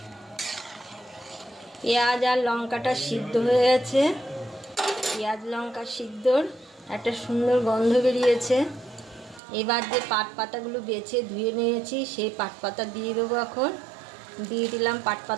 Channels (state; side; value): drops out; left; at 9.4 s